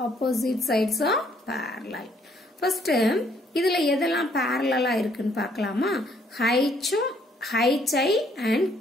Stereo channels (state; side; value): normal; both; correlation 0.66